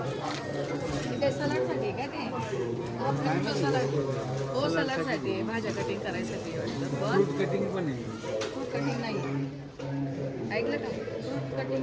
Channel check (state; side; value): identical; both; correlation 1.00